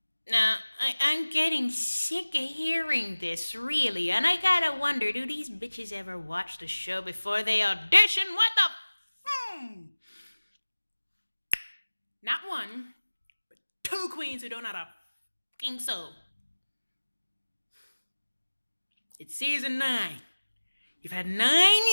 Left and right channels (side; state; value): both; inverted; correlation -1.00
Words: Now, I'm getting sick of hearing this, really, and I gotta wonder, do these bitches ever watch the show before they audition? What the? Not one, but two queens who don't know how to fucking sew. It's season 9. You've had 9